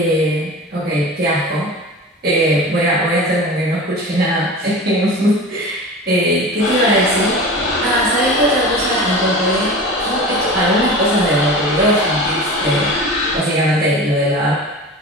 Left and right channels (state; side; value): normal; both; correlation 0.33